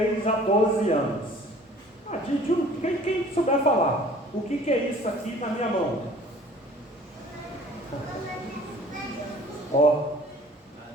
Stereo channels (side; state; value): both; normal; correlation 0.50